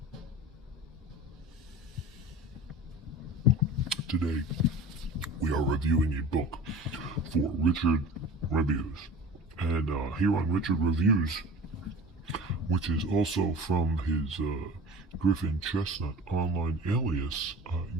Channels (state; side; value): normal; both; correlation 0.39